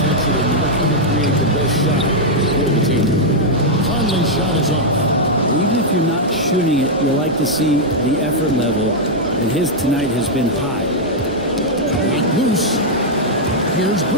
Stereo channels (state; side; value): normal; both; correlation -0.04